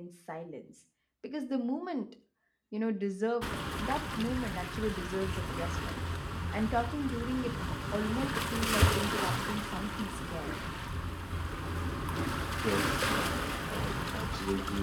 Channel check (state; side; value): identical; both; correlation 1.00